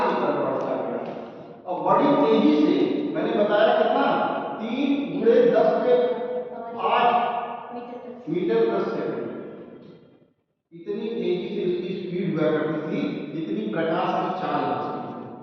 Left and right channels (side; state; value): both; identical; correlation 1.00